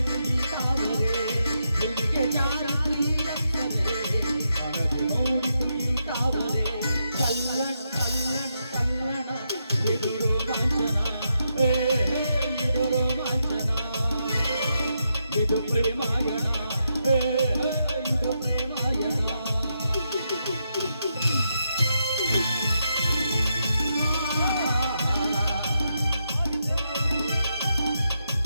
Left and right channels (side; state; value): both; inverted; correlation -0.82